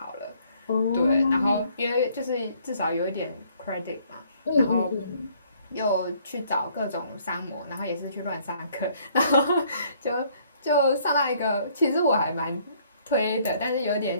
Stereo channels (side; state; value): both; inverted; correlation -0.63